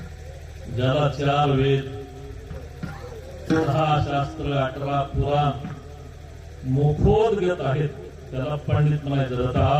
ज्याला 4 वेद, 6 शास्त्र, 18 पुराण मुखोद्गत आहेत त्याला पंडित म्हणायचं.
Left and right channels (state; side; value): identical; both; correlation 1.00